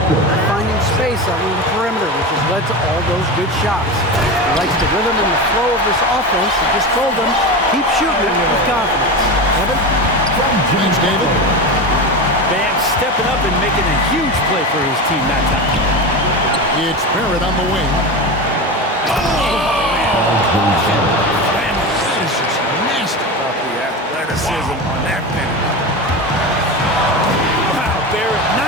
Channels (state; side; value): normal; both; correlation 0.23